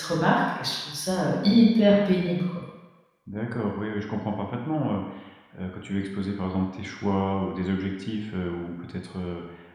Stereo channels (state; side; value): identical; both; correlation 1.00